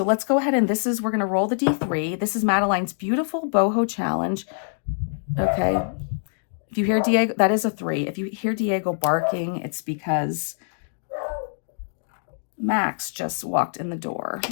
let's go ahead, and we're going to roll the D3. This is Madeline's beautiful boho challenge. Okay. If you hear Diego, that is a 3. If you hear Diego barking, it's because Max just walked in the door.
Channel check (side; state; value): right; silent; digital silence